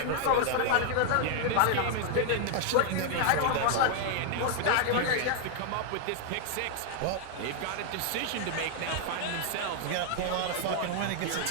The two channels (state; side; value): different; both; correlation 0.00